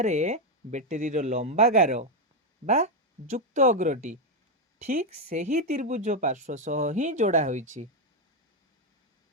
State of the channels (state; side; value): normal; both; correlation 0.05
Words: ବ୍ୟାଟେରୀର ଲମ୍ବା ଗାର ବା ଯୁକ୍ତ ଅଗ୍ରଟି ଠିକ୍ ସେହି ତ୍ରିଭୁଜ ପାର୍ଶ୍ୱ ସହ ହିଁ ଯୋଡ଼ା ହୋଇଛି।